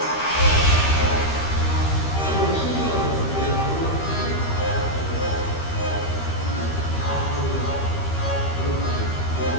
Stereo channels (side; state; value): right; late; 13 ms